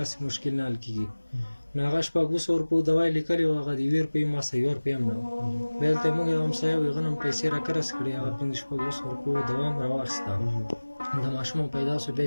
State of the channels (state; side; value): inverted; both; correlation -1.00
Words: مشکل نه حل کېږي نو هغه 200 روپیو دوا یې لیکلې وه هغه د 2 روپۍ ما سه 1 روپۍ هم نه وه بیا دلته موږ یو همسایه و هغه نه هم پیسې راکرس کړې هغه 500 روپیو دوا هم راواخېسته د ماشوم پیدا شو بیا